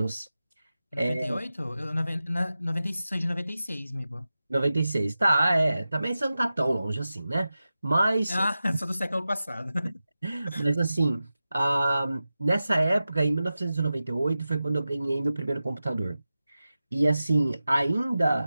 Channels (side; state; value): both; inverted; correlation -0.94